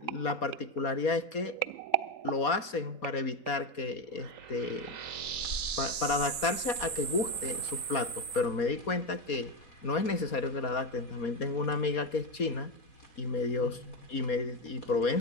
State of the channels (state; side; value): late; right; 4.2 ms